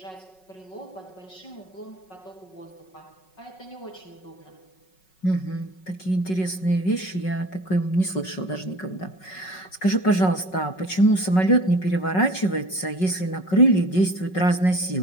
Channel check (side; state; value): right; late; 5.4 ms